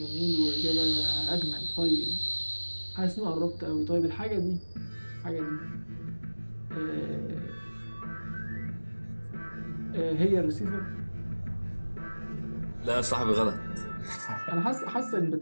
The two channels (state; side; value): inverted; both; correlation -1.00